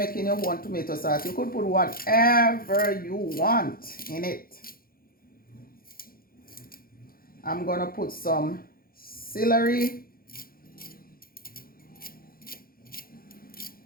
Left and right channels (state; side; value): late; right; 0.42 ms